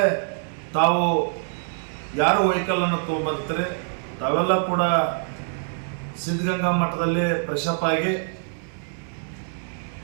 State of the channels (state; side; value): silent; left; 60 dB below the other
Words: ತಾವು ಯಾರು ವೆಹಿಕಲನ್ನು ತೊಗೊಂಬರ್ತೀರಿ ತಾವೆಲ್ಲ ಕೂಡ ಸಿದ್ಧಗಂಗಾ ಮಠದಲ್ಲಿ ಫ್ರೆಶಪ್ ಆಗಿ